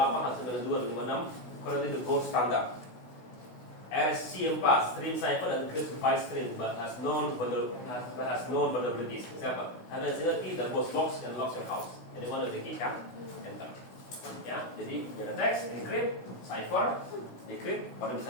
192, 156, currently the gold standard. RSC4, stream cipher and encrypts byte stream but has known vulnerabilities. Example, have a single key that both locks and locks your house. Anyone with the key can enter. Ya, jadi ada teks, encrypt, cipher, decrypt, baru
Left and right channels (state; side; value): late; right; 16 ms